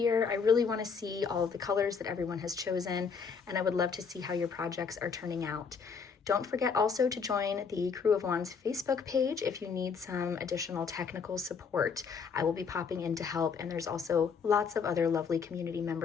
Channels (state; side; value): quieter; right; 5.8 dB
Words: I really want to see all of the colors that everyone has chosen, and I would love to see how your projects are turning out. Don't forget also to join the Crew of Wands Facebook page if you need some additional technical support. I will be popping in to help, and there's also lots of other lovely community